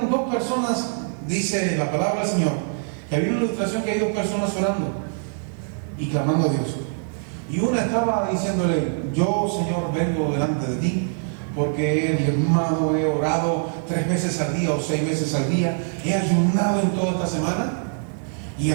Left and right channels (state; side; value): silent; left; 63 dB below the other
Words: 2 personas, dice la palabra del Señor, que había una ilustración que hay 2 personas orando y clamando a Dios. Y una estaba diciéndole: yo, Señor, vengo delante de ti porque he diezmado, he orado 3 veces al día o 6 veces al día, he ayunado en toda esta semana, y